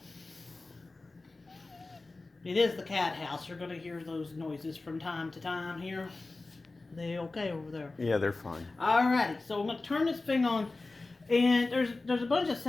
It is the cat house. You're going to hear those noises from time to time here. They okay over there? Yeah, they're fine. Alrighty, so I'm going to turn this thing on, and there's a bunch of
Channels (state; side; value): quieter; right; 3.4 dB